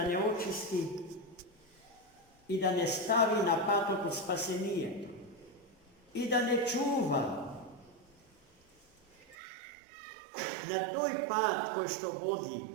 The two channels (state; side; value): drops out; left; at 9.3 s